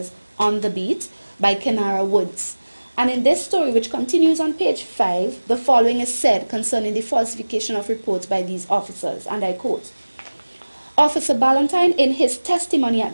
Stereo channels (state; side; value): inverted; both; correlation -1.00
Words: on the beat by Kenara Woods. And in this story, which continues on page 5, the following is said concerning the falsification of reports by these officers, and I quote, Officer Ballantyne, in his testimony at